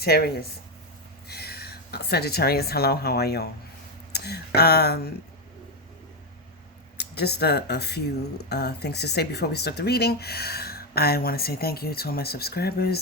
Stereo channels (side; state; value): both; normal; correlation 0.08